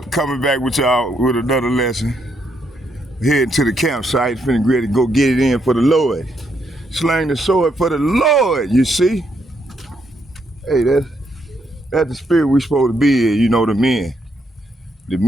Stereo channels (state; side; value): normal; both; correlation 0.76